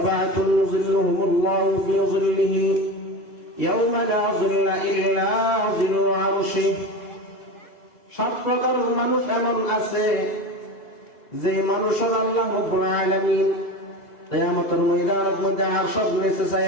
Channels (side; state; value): right; late; 3.0 ms